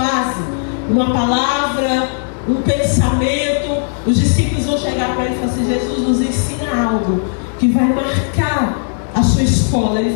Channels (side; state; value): right; silent; digital silence